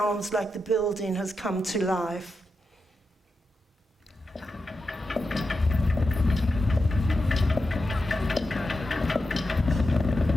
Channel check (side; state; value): both; normal; correlation 0.88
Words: like the building has come to life.